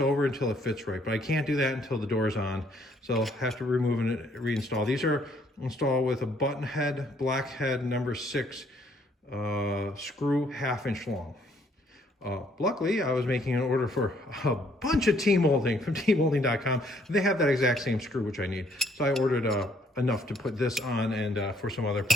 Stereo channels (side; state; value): both; normal; correlation 0.66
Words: until it fits right, but I can't do that until the door's on. So I'll have to remove and reinstall. These are installed with a button head, black head, number 6 screw, 1/2 inch long. Luckily, I was making an order for a bunch of T-molding from T-molding.com. They have that exact same screw, which I need. So I ordered enough to put this on and for some other